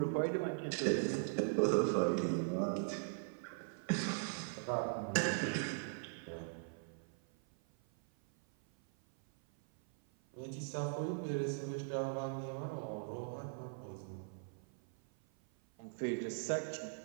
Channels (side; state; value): left; silent; 51 dB below the other